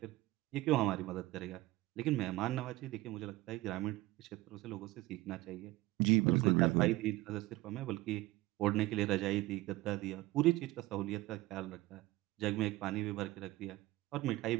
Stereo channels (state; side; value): quieter; left; 18.6 dB